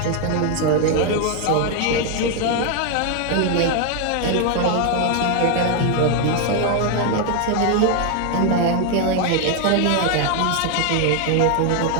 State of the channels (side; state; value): both; different; correlation 0.01